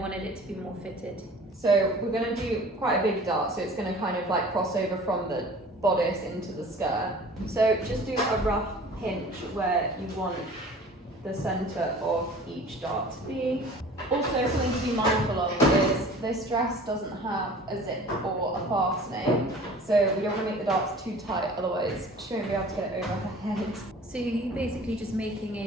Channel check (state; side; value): normal; both; correlation 0.45